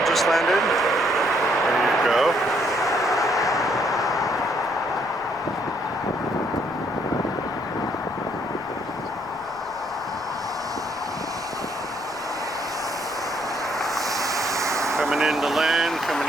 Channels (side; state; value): left; noise; rumble, 25 dB below the sound